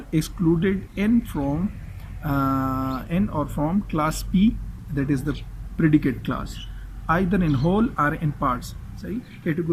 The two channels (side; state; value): both; identical; correlation 1.00